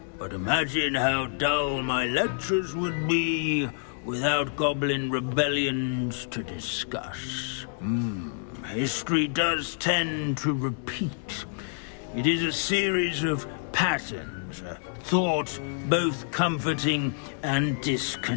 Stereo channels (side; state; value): right; silent; digital silence